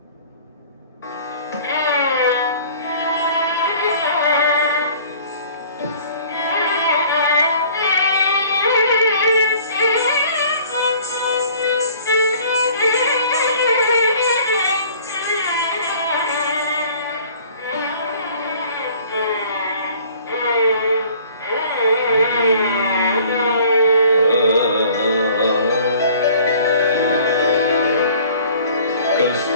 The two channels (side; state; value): both; inverted; correlation -0.51